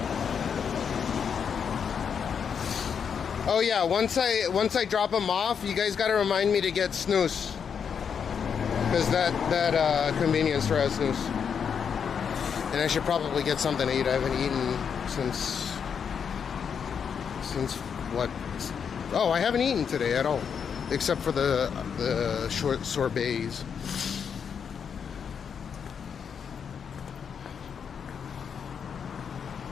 Oh yeah, once I drop him off, you guys gotta remind me to get snooze, because that convenience store has snooze, and I should probably get something to eat. I haven't eaten since what? Oh, I haven't eaten today at all, except for the short sorbets.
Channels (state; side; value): quieter; right; 7.0 dB